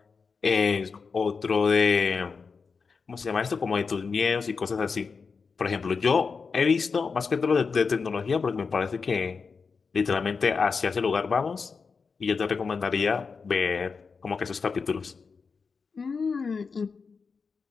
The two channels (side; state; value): right; quieter; 5.1 dB